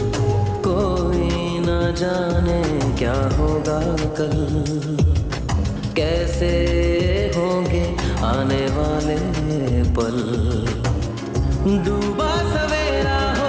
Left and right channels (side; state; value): both; identical; correlation 1.00